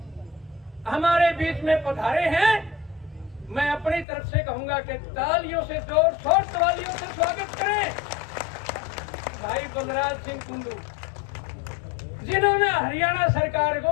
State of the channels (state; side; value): drops out; right; at 4.0 s